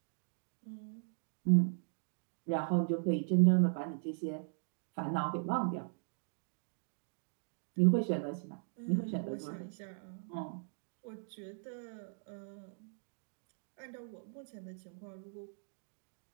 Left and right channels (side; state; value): left; silent; digital silence